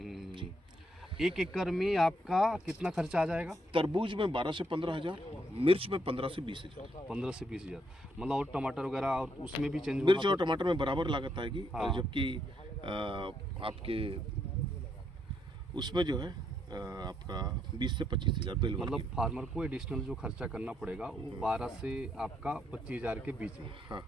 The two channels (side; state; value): both; normal; correlation 0.75